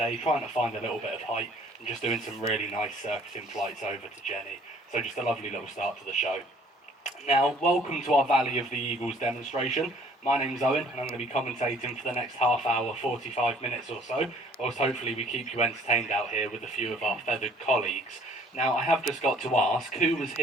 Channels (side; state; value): both; normal; correlation 0.57